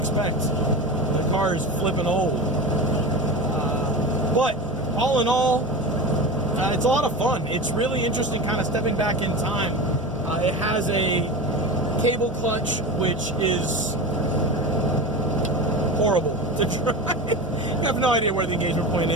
The car is flipping old. But all in all, it's a lot of fun. It's really interesting kind of stepping back in time. It has a cable clutch, which is horrible to drive. You have no idea where the engagement point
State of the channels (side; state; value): both; normal; correlation 0.27